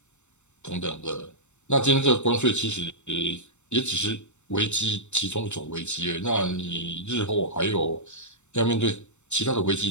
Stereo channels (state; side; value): late; right; 0.83 ms